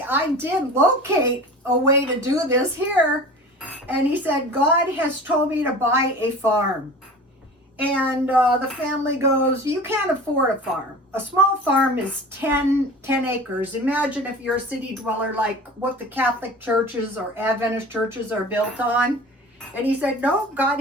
I did locate a way to do this here. And he said, God has told me to buy a farm. And the family goes, you can't afford a farm. A small farm is 10 acres. Imagine if you're a city dweller, like what the Catholic churches or Adventist churches are built on. And he said, no, God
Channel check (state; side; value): normal; both; correlation 0.38